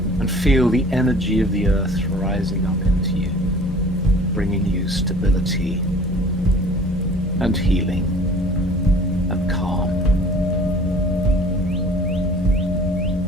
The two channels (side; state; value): both; normal; correlation 0.48